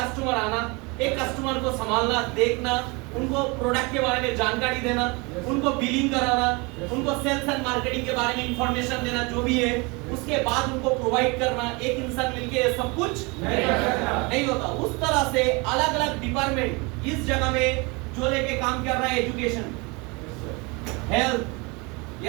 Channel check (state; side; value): quieter; left; 27.8 dB